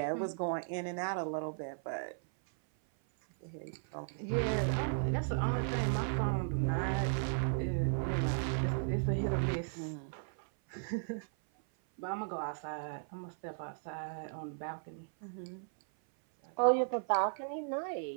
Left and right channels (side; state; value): left; silent; 54 dB below the other